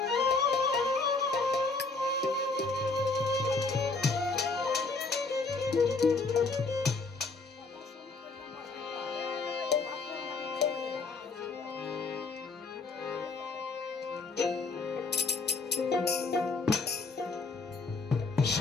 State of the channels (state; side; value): quieter; right; 4.0 dB